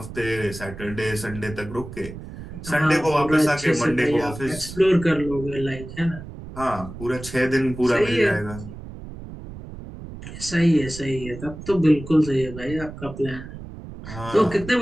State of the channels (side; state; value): right; noise; rumble, 12 dB below the sound